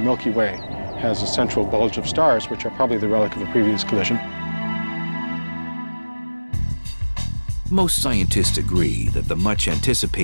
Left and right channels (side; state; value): both; inverted; correlation -1.00